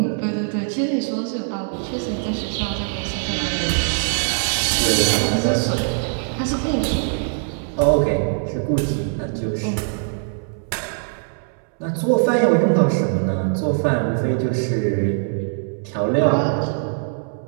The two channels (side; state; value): left; silent; 64 dB below the other